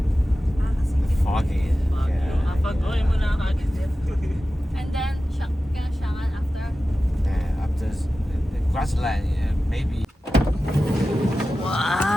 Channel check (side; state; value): both; normal; correlation 0.94